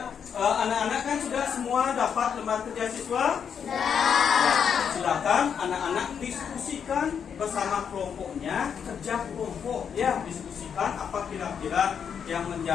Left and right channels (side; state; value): right; quieter; 7.4 dB